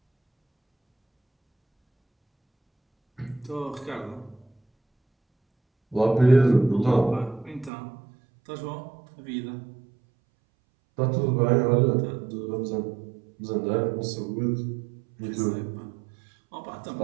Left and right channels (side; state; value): left; drops out; at 7.7 s